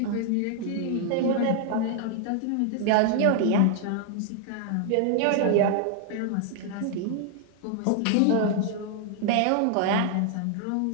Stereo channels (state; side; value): different; both; correlation 0.00